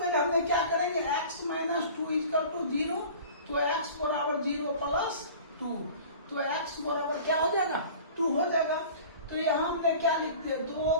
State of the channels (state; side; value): inverted; both; correlation -0.42